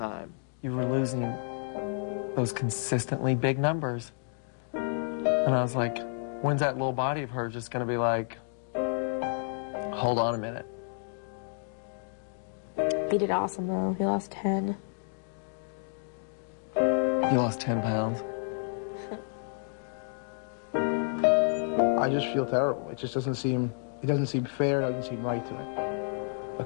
You were losing those consistently big numbers. And I was like, when's that little body of hers just gonna be like, hold on a minute. He did awesome, though. He lost 10. You lost 10 pounds? I just feel terrible. It just doesn't seem fair, it doesn't seem right to me. A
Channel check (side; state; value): right; silent; digital silence